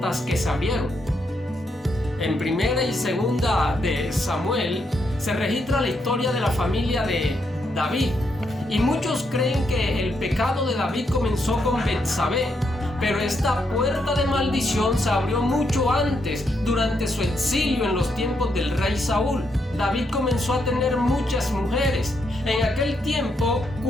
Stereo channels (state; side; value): normal; both; correlation 0.79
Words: que se abrieron. En primera y segunda de Samuel se registra la historia de la familia de David, y muchos creen que el pecado de David comenzó con Betsabé, pero esta puerta de maldición se abrió mucho antes, durante su exilio en los tiempos del rey Saúl. David comenzó a tener muchas mujeres. En aquel tiempo